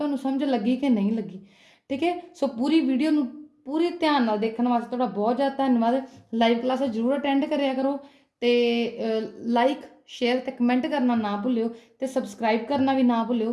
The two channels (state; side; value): identical; both; correlation 1.00